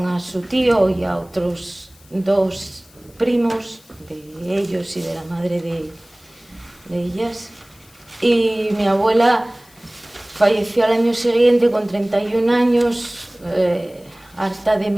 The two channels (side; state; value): left; noise; hiss, 28 dB below the sound